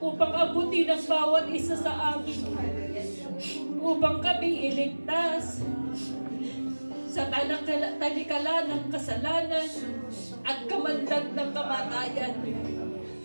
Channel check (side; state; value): both; inverted; correlation -1.00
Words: abutin ang bawat isa sa amin, upang kami iligtas sa talikala ng kasalanan at kamandag ng kamatayan.